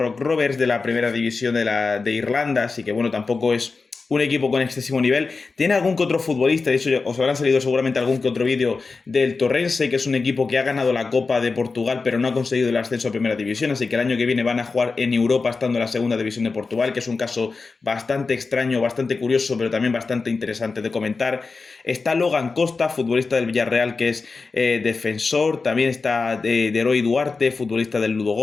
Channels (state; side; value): quieter; right; 4.2 dB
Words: Rovers de la primera división de Irlanda, así que bueno, tampoco es un equipo con excesivo nivel. Tiene algún que otro futbolista, de hecho os habrán salido seguramente algún que otro vídeo del Torrense, que es un equipo que ha ganado la Copa de Portugal pero no ha conseguido el ascenso a primera división, así que el año que viene van a jugar en Europa estando en la segunda división de Portugal, que es un caso bastante extraño, bastante curioso, pero también bastante interesante de comentar. Está Logan Costa, futbolista del Villarreal, que es defensor. También está Deroy Duarte, futbolista del